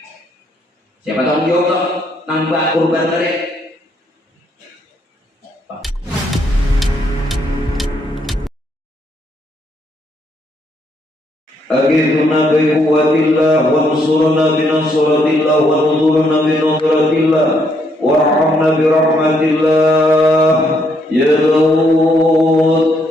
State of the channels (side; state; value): both; normal; correlation 0.73